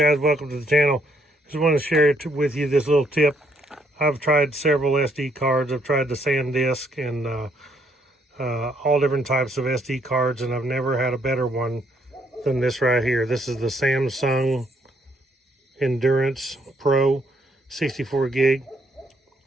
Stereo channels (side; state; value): both; normal; correlation 0.71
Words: welcome to the channel. Just want to share with you this little tip. I've tried several SD cards. I've tried the SanDisk and all different types of SD cards, and I've never had a better one than this right here. This is the Samsung Endurance Pro 64 gig